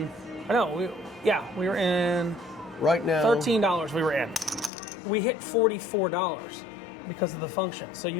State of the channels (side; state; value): right; drops out; at 4.7 s